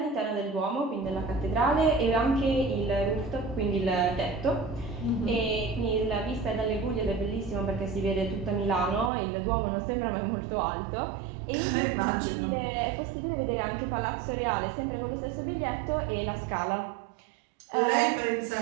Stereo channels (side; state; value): left; drops out; at 9.1 s